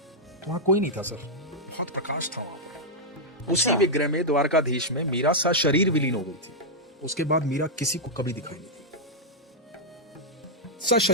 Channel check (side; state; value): both; normal; correlation -0.05